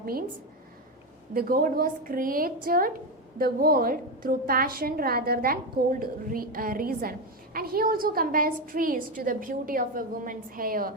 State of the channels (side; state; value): both; normal; correlation 0.11